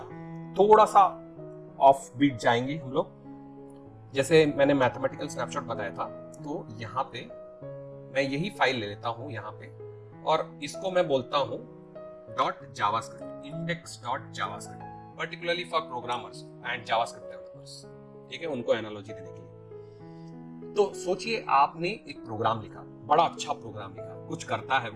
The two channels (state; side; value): identical; both; correlation 1.00